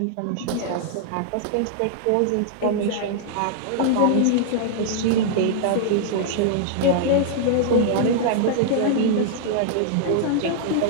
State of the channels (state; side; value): different; both; correlation -0.01